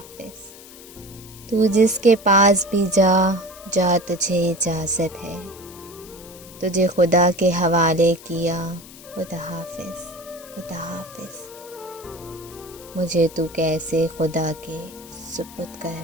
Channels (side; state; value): left; noise; hiss, 19 dB below the sound